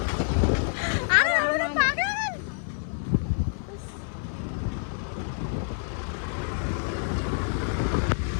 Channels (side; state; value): right; silent; 56 dB below the other